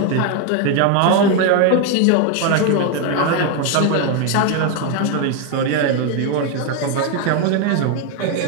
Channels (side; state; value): both; different; correlation 0.01